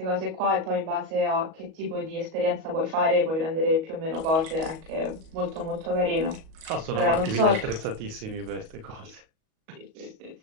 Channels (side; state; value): left; late; 37 ms